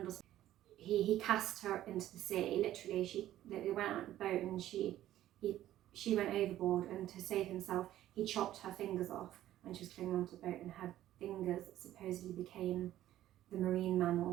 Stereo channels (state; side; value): quieter; left; 13.2 dB